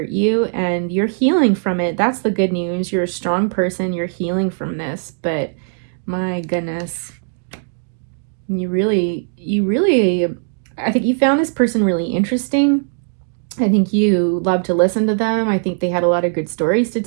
you and you're healing from it. That's the good news. You're a strong person. You're healing from this, but my goodness, you really, I think you found this person really interesting. I think you love to listen to them. I think they had a lot of good stories to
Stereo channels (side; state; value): left; silent; digital silence